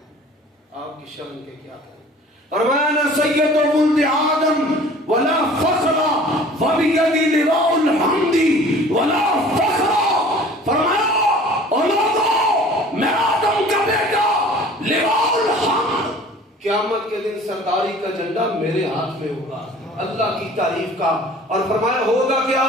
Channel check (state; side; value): normal; both; correlation 0.47